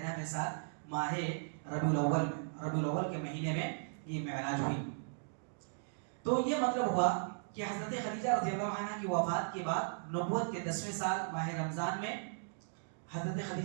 سال ماہ ربیع الاول کے مہینے میں یہ معراج ہوئی. تو یہ مطلب ہوا کہ حضرت خدیجہ رضی اللہ عنہ کی وفات کے بعد نبوت کے 10ویں سال ماہ رمضان میں حضرت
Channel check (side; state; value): left; silent; digital silence